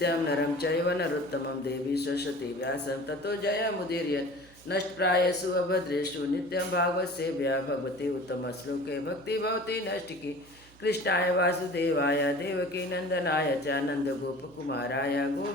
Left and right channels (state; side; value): noise; right; hum, 25 dB below the sound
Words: नरं चैव नरोत्तमं देवी सरस्वती व्यासं ततो जयमुदीरयेत् नष्टप्रायेषु अभद्रेषु नित्यं भागवतसेव्या भगवती उत्तमश्लोके भक्तिभवती नष्टिकी कृष्णाय वासुदेवाय देवकीनन्दनाय च नन्दगोपकुमाराय